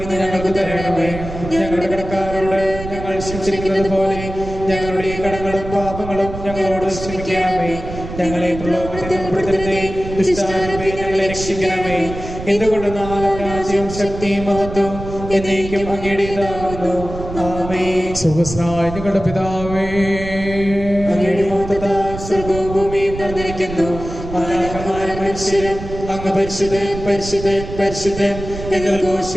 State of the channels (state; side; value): noise; right; rumble, 10 dB below the sound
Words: ഇന്ന് ഞങ്ങൾക്ക് തരണമേ. ഞങ്ങളുടെ കടക്കാരോട് ഞങ്ങൾ ക്ഷമിച്ചിരിക്കുന്നത് പോലെ ഞങ്ങളുടെ കടങ്ങളും പാപങ്ങളും ഞങ്ങളോട് ക്ഷമിക്കണമേ. ഞങ്ങളെ പ്രലോഭനത്തിൽ ഉൾപ്പെടുത്തരുതേ, ദുഷ്ടാരൂപേ ഞങ്ങളെ രക്ഷിക്കണമേ. എന്തുകൊണ്ടെന്നാൽ രാജ്യവും ശക്തിയും മഹത്വവും എന്നേക്കും അങ്ങയുടേതാകുന്നു. ആമേൻ. സ്വർഗ്ഗസ്ഥനായ ഞങ്ങളുടെ പിതാവേ, അങ്ങയുടെ മഹത്വത്താൽ സ്വർഗ്ഗവും ഭൂമിയും നിറഞ്ഞിരിക്കുന്നു. മാലാഖമാരും മനുഷ്യരും അങ്ങ് പരിശുദ്ധൻ പരിശുദ്ധൻ പരിശുദ്ധൻ എന്ന്